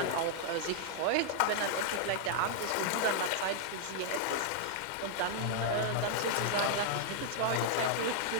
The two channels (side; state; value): both; different; correlation -0.01